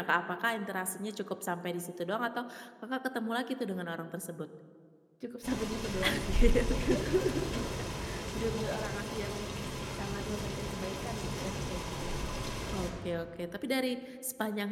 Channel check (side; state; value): both; identical; correlation 1.00